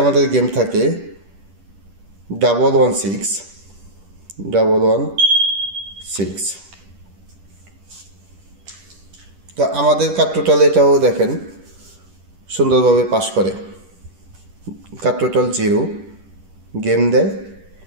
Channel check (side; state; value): left; late; 10 ms